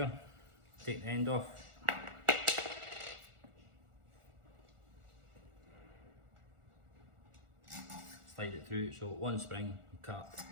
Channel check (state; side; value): late; left; 1.4 ms